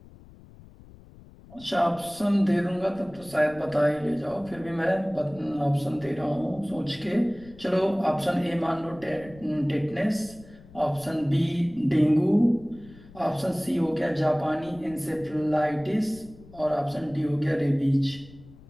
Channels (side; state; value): left; noise; rumble, 22 dB below the sound